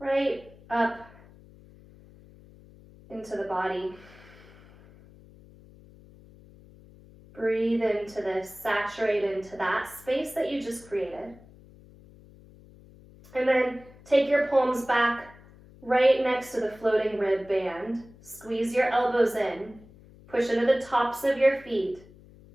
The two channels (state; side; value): noise; left; hum, 23 dB below the sound